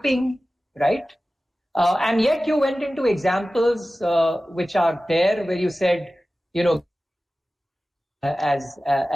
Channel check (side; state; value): both; normal; correlation 0.96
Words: right? And yet you went into examples which are there where you said,